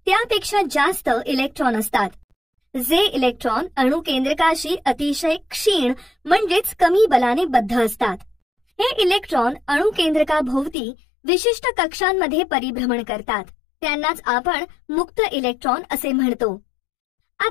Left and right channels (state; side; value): drops out; right; at 10.8 s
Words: त्यापेक्षा जास्त इलेक्ट्रॉन असतात. जे इलेक्ट्रॉन अणुकेंद्रकाशी अतिशय क्षीण म्हणजेच कमी बलाने बद्ध असतात. हे इलेक्ट्रॉन अणुकेंद्रकाभोवती विशिष्ट कक्षांमध्ये परिभ्रमण करतात. त्यांनाच आपण मुक्त इलेक्ट्रॉन असे म्हणतो.